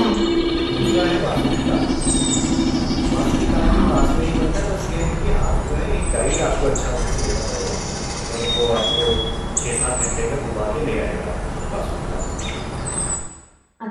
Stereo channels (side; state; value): both; identical; correlation 1.00